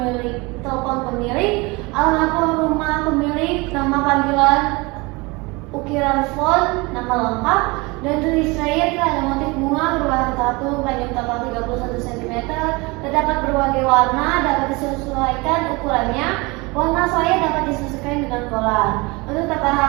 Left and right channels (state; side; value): quieter; left; 25.4 dB